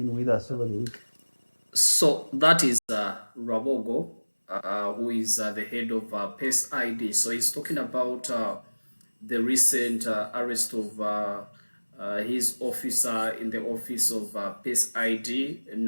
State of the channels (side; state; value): both; inverted; correlation -1.00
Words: with us over the week. So that is Rwabwogo, who is the head of PACE ID. So he's talking about the recent arrest of his officer in the office of PACE ID,